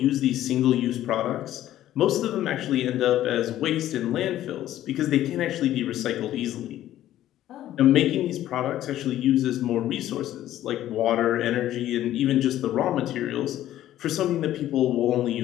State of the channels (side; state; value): right; quieter; 13.1 dB